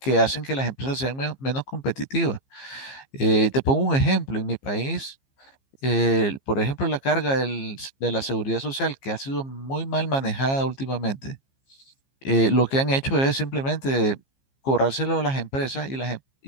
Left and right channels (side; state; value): right; late; 15 ms